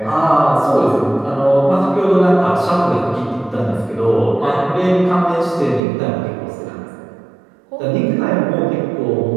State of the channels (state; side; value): drops out; left; at 5.8 s